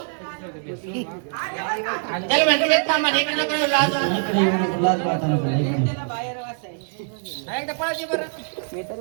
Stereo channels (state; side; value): silent; left; digital silence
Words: त्याला म्हणते ते थांबा, इकडे नको येऊ, लाज वाटते. इकडे येऊ नको, लाज वाटत नको इकडे. त्याला बाहेर वाचाय एकदा पळायची बरं मी तरी